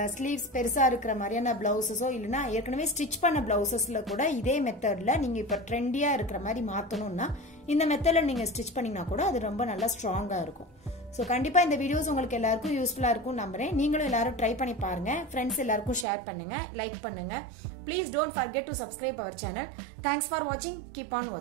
ஸ்லீவ்ஸ் பெருசா இருக்கிற மாதிரியான பிளவுசஸோ இல்லைன்னா ஏற்கனவே ஸ்டிச் பண்ண பிளவுசஸ்ல கூட இதே மெத்தட்ல நீங்க இப்ப ட்ரெண்டியா இருக்கிற மாதிரி மாத்தணும்னா இந்த மெத்தட்ல நீங்க ஸ்டிச் பண்ணீங்கன்னா கூட அது ரொம்ப நல்லா ஸ்ட்ராங்கா இருக்கும். ஸோ கண்டிப்பா இந்த வீடியோஸ் உங்களுக்கு எல்லாருக்கும் யூஸ்ஃபுல்லா இருக்கும் நம்புறேன். நீங்களும் எல்லாரும் ட்ரை பண்ணி பாருங்க, ஃப்ரெண்ட்ஸ் எல்லாருக்கும் ஷேர் பண்ணுங்க, லைக் பண்ணுங்க. Please don't forget to subscribe our channel. Thanks for வாட்சிங், கீப் ஆன்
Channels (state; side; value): drops out; left; at 16.1 s